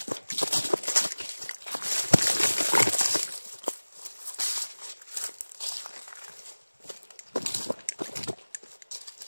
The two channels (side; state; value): both; inverted; correlation -1.00